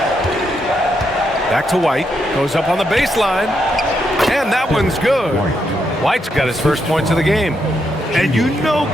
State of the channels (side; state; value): both; normal; correlation 0.80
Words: Back to White, goes up on the baseline, and that one's good. White's got his first points of the game. And you know